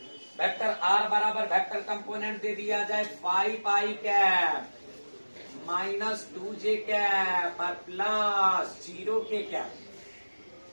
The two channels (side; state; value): both; inverted; correlation -1.00